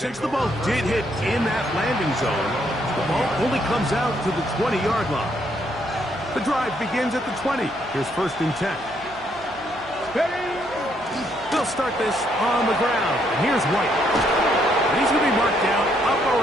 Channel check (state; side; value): noise; right; hum, 20 dB below the sound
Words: the ball did hit in that landing zone, the ball only comes out to the 20-yard line. The drive begins at the 20. Here's 1st and 10. They'll start this on the ground. And here's White. And he's going to be marked down up